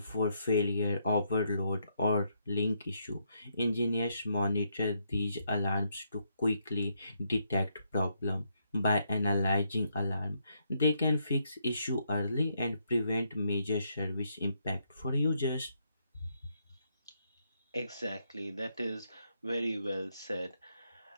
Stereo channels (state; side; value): inverted; both; correlation -0.76